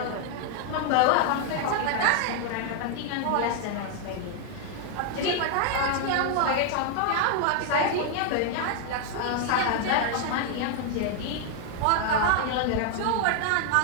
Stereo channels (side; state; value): both; different; correlation 0.00